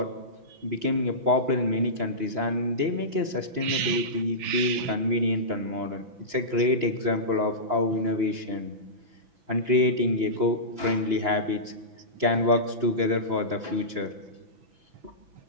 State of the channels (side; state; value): left; late; 6.1 ms